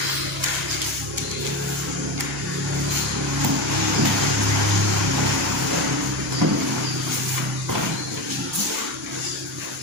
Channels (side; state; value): both; normal; correlation 0.19